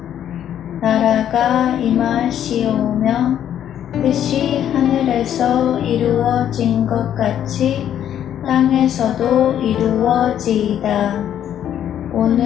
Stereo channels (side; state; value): right; quieter; 10.3 dB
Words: 나라가 임하시오며 뜻이 하늘에서 이루어진 것 같이 땅에서도 이루어지이다.